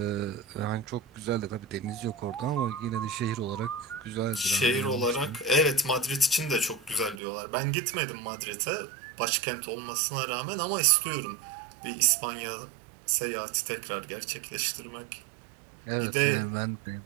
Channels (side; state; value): left; drops out; at 7.2 s